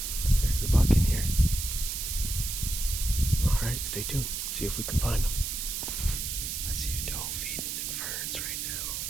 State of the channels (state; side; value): noise; right; hiss, 3 dB below the sound